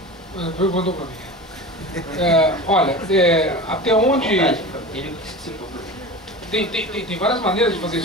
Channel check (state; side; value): normal; both; correlation 0.31